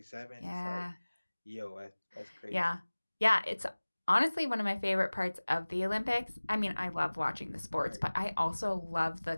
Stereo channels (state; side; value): inverted; both; correlation -1.00